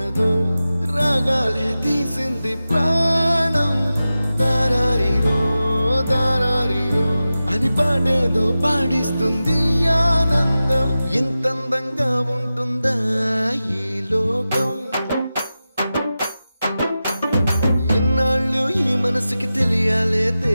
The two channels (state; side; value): inverted; both; correlation -0.94